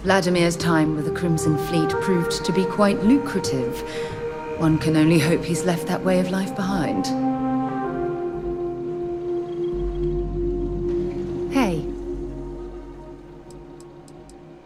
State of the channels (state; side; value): identical; both; correlation 1.00